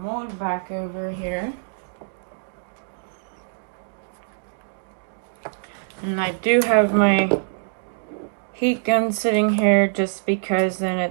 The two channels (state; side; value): silent; left; digital silence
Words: mold back over here. And I do have my heat gun sitting here just because then